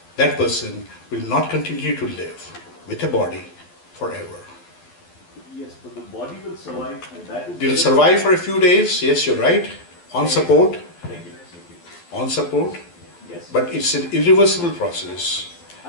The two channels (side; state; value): right; late; 12 ms